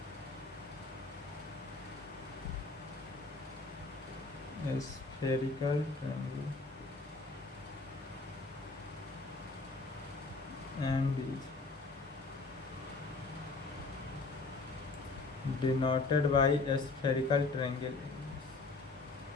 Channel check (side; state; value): right; quieter; 3.7 dB